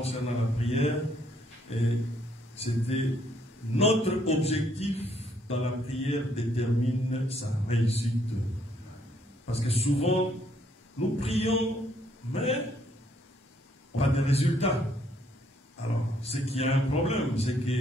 la prière, et c'était notre objectif dans la prière détermine sa réussite. Parce que souvent, nous prions, mais on a des résultats. Alors, c'est qu'il y a un problème, c'est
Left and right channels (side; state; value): both; normal; correlation 0.69